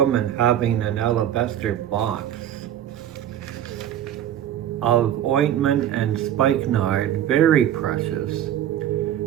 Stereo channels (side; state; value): left; quieter; 10.9 dB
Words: having an alabaster box of ointment and spikenard, very precious.